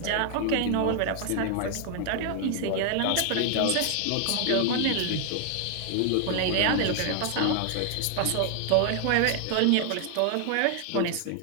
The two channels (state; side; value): different; both; correlation 0.00